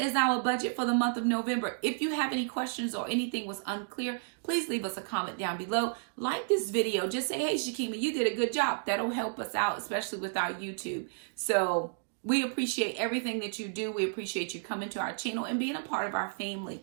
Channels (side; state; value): left; silent; digital silence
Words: is our budget for the month of November. If you have any questions or anything was unclear, please leave us a comment down below. Like this video. Just say, hey, Shakima, you did a good job. That'll help us out, especially with our YouTube. So we appreciate everything that you do. We appreciate you coming to our channel and being a part of our family.